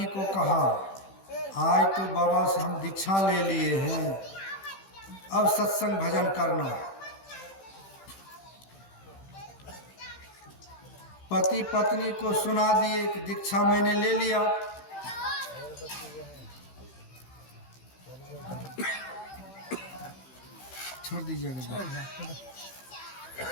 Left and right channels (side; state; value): right; late; 15 ms